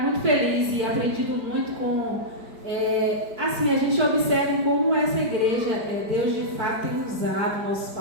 muito feliz e aprendido muito com... assim, a gente observa como essa igreja, Deus de fato tem usado nossos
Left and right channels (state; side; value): late; left; 4.5 ms